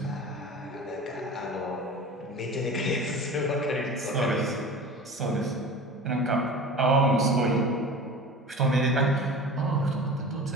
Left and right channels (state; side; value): normal; both; correlation 0.36